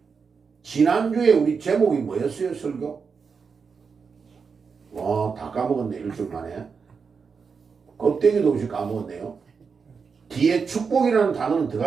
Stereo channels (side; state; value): left; quieter; 5.5 dB